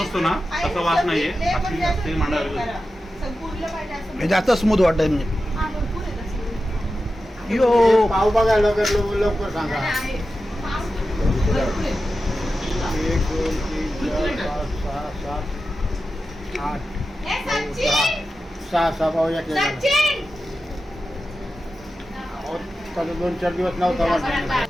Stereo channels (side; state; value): both; normal; correlation 0.92